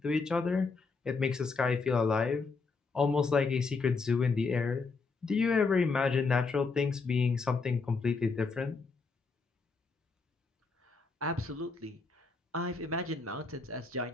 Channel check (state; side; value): quieter; right; 4.4 dB